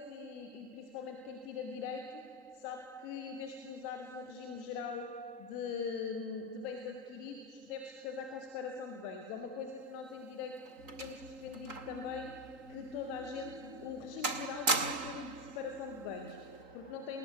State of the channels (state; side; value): late; left; 3.8 ms